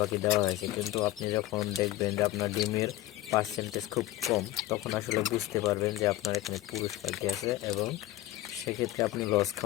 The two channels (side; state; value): right; quieter; 15.4 dB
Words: পাখি দেওয়া হয়েছে, কিন্তু আপনি যখন দেখবেন যে আপনার ডিমের পার্সেন্টেজ খুব কম, তখন আসলে বুঝতে পারবেন যে আপনার এখানে পুরুষ পাখি আছে, এবং সেক্ষেত্রে আপনি লস